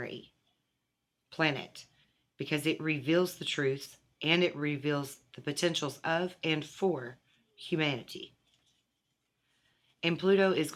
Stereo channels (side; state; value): both; identical; correlation 1.00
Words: planet because it reveals the truth and it reveals the potentials of and for humanity. And Pluto is